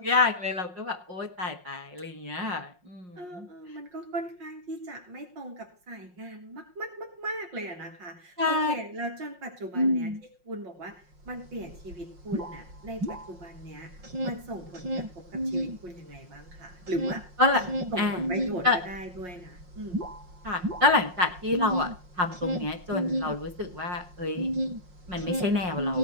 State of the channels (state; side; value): late; left; 5.6 ms